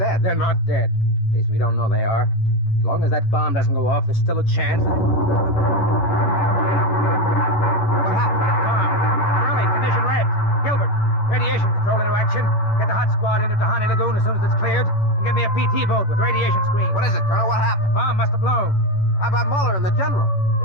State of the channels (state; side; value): late; right; 11 ms